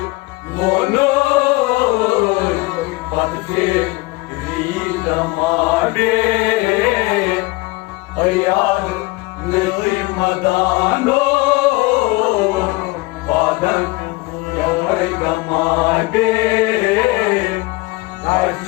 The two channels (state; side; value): quieter; right; 22.8 dB